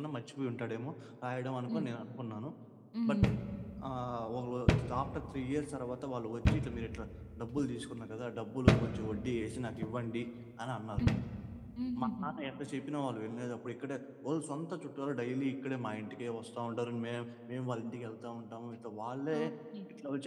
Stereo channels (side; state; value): both; identical; correlation 1.00